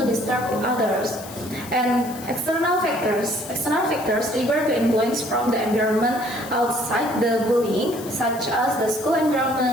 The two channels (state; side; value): noise; left; hiss, 16 dB below the sound